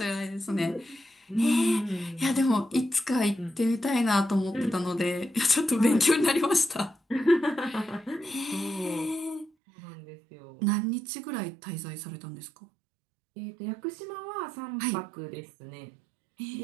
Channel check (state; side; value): drops out; left; at 9.5 s